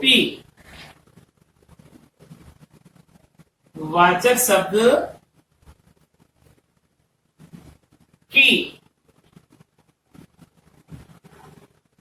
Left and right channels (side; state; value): both; identical; correlation 1.00